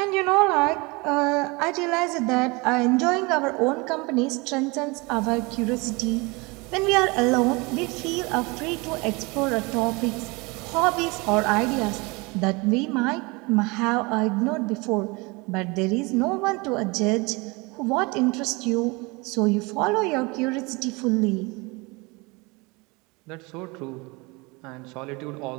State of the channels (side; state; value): left; quieter; 26.3 dB